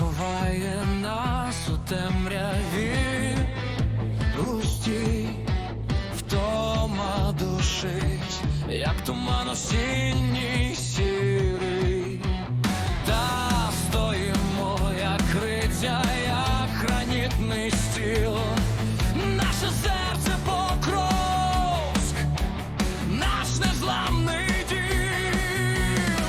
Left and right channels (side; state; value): both; identical; correlation 1.00